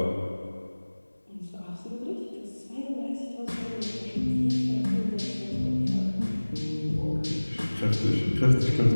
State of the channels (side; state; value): both; inverted; correlation -1.00